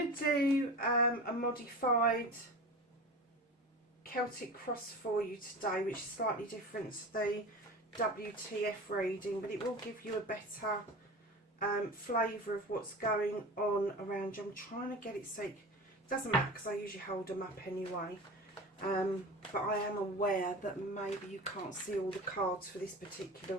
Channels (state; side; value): normal; both; correlation 0.33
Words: to do a modified Celtic cross for you today, which is slightly different to the WTF reading, but it will give you a better flavour of what's going on around you. I'm trying to get it so it doesn't matter because I usually hold them up anyway, but I am aware that maybe you can't see all the cards for this particular